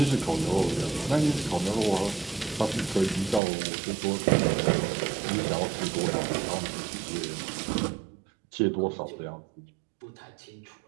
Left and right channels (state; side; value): drops out; left; at 3.4 s